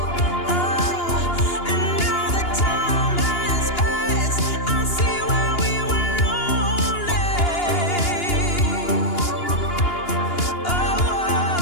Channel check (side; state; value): right; late; 2.8 ms